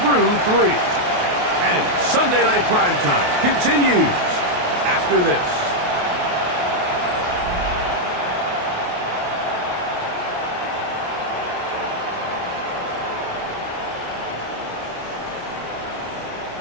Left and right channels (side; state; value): left; late; 28 ms